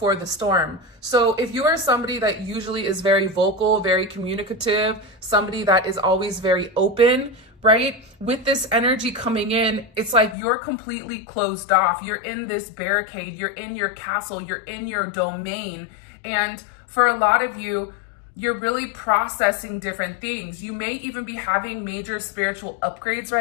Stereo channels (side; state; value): right; drops out; at 10.4 s